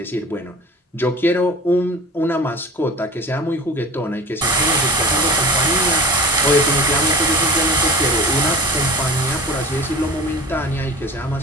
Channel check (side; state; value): both; normal; correlation 0.39